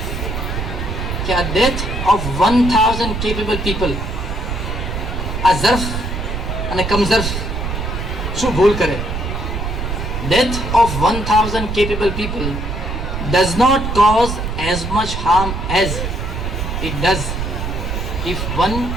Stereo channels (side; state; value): right; noise; rumble, 3 dB below the sound